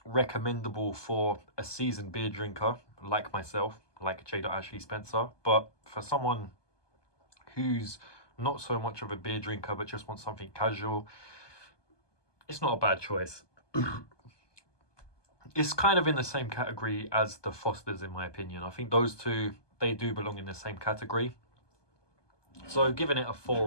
recommendable for a seasoned beer drinker like myself, like J. Ashley Spencer, but for someone who's not so much of a beer drinker but just wants something casual, it's not a bad choice. It's kind of in the same category as the Fosters, in my opinion. I think those two, they do belong in the same category. So giving it a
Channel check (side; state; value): right; late; 1.2 ms